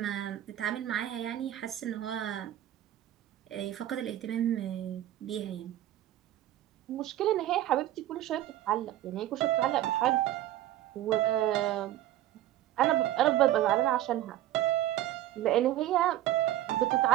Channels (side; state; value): left; quieter; 13.4 dB